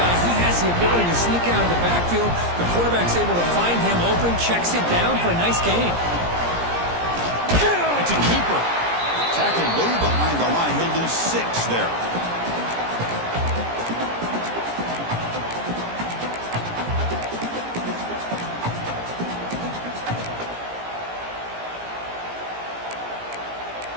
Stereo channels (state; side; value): late; left; 17 ms